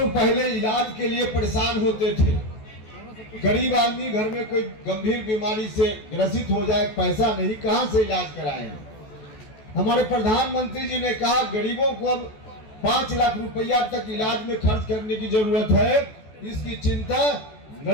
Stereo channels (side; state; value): right; late; 14 ms